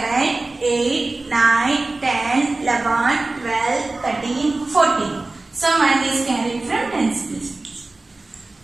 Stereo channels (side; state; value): left; quieter; 3.2 dB